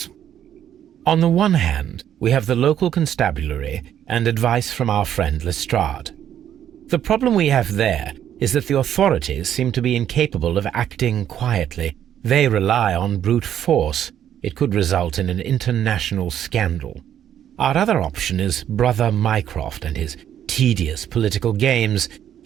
On the one hand, we have the local constabulary and advice from our friend Lestrade. The problem we have there is that the authorities seem to be incapable of acting quietly. They rely on brute force. It could result in an international scandal. Our other option is Brother Mycroft and his tedious political games.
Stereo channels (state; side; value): quieter; left; 10.2 dB